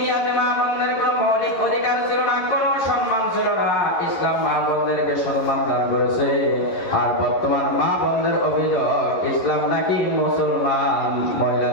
মা বোনদের কোনো মৌলিক অধিকার ছিল না, কোনো সম্মান ছিল না। ইসলাম মা বোনদেরকে সম্মান দান করেছে। আর বর্তমান মা বোনদের অভিযোগ ইসলাম নাকি মুসলমান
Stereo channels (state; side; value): late; right; 11 ms